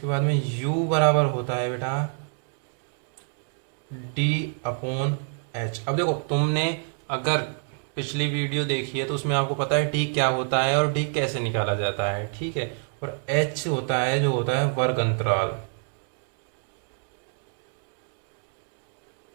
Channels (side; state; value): left; silent; 55 dB below the other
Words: बाद में u बराबर होता है बेटा d अपॉन h। अब देखो तुमने अगर पिछली वीडियो देखी है तो उसमें आपको पता है d क्या होता है और d कैसे निकाला जाता है, ठीक है। और h होता है जो होता है वर्ग अंतराल,